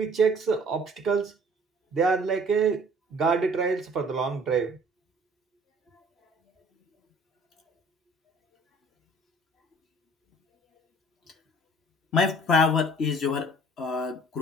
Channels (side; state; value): both; normal; correlation 0.52